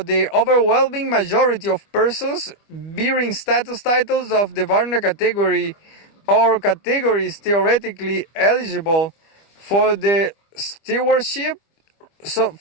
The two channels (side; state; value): right; late; 25 ms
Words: overwhelming majority of persons bearing status titles of the Varna category or categories theoretically eligible for the stewardship